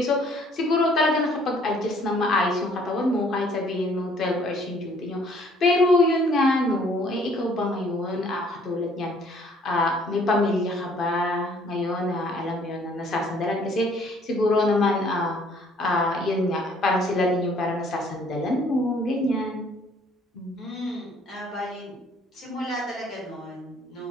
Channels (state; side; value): normal; both; correlation 0.60